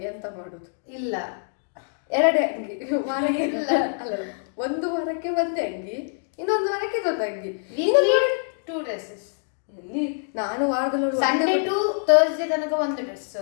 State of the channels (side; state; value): right; silent; 62 dB below the other